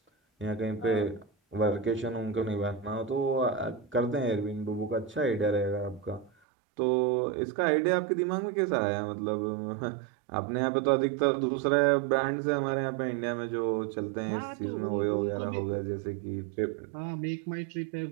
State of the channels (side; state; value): left; drops out; at 6.3 s